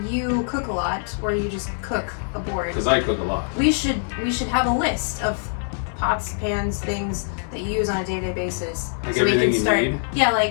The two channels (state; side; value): silent; right; 63 dB below the other